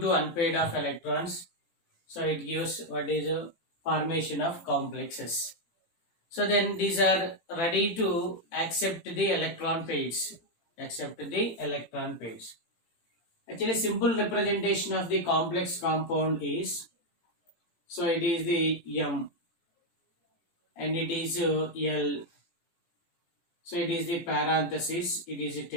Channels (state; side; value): late; right; 18 ms